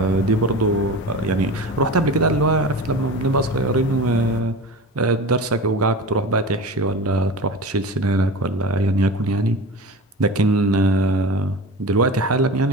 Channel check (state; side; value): normal; both; correlation 0.31